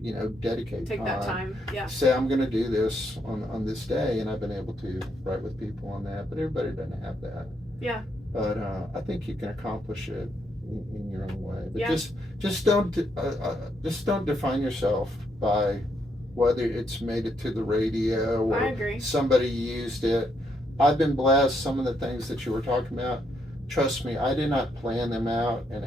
you know, dedicate Take that time. Say I'm going to do this on this day, and I've been able to write with people on that. But everybody doesn't have that. Yeah. But I think you can accomplish it in your own way. But just don't define yourself by whether it's made it to the radio or I agree. Somebody used it. I've been blessed. Some of the things that you were talking about, trust me, I did not plan them out and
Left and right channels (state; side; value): normal; both; correlation 0.76